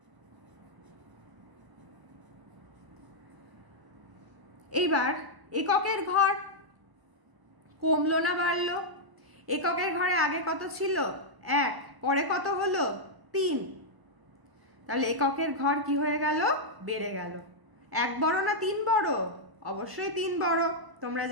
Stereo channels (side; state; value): left; late; 1.0 ms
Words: এইবার এককের ঘর কমলো না বাড়লো? এককের ঘরে আগে কত ছিল? 1, পরে কত হলো? 3। তাহলে এককের ঘর কি হয়ে গেল? বেড়ে গেল। 1 বড় না 3 বড়? অবশ্যই 3 বড়, তোমরা